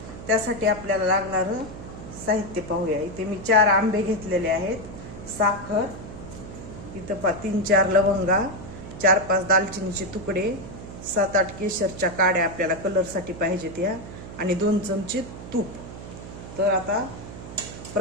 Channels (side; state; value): right; noise; hum, 12 dB below the sound